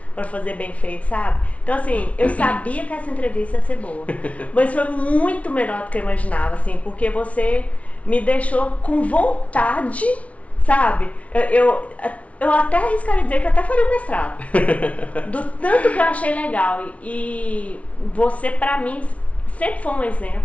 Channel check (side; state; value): right; late; 0.065 ms